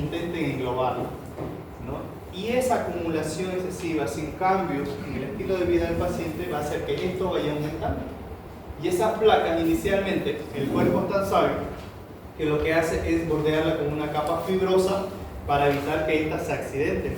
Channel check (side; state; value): both; identical; correlation 1.00